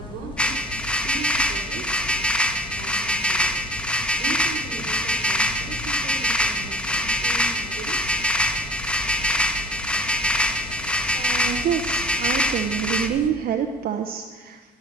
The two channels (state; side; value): normal; both; correlation 0.44